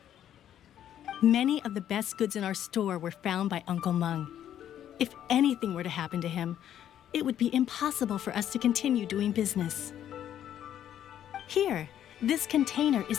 Many of the best goods in our store were found by Uncle Mung. If anything were to happen to him, it would be impossible for us to continue doing business. Here, this container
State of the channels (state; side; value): quieter; right; 10.6 dB